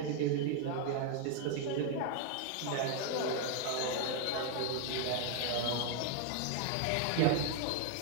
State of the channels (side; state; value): both; different; correlation 0.00